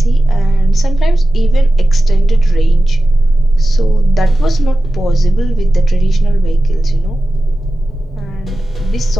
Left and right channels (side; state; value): both; normal; correlation 0.94